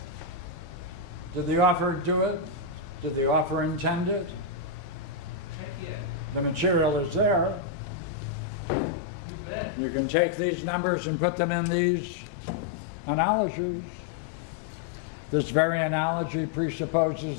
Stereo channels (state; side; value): drops out; right; at 7.7 s